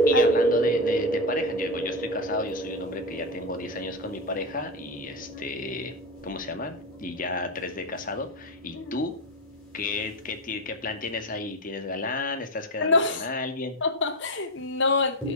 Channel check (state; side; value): normal; both; correlation 0.15